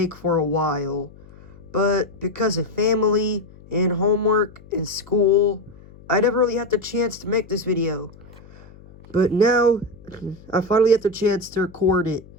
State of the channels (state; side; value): noise; left; hum, 22 dB below the sound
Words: for a while, but because of family, and homework, and school, I never really had the chance to make this video. But now, I finally had the chance to record it.